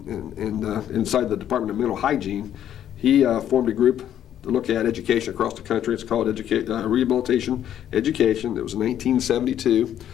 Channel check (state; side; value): quieter; right; 10.6 dB